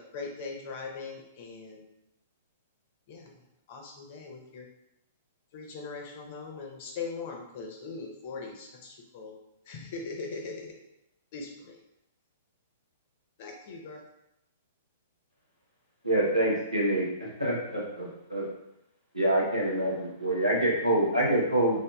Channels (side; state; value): both; inverted; correlation -0.48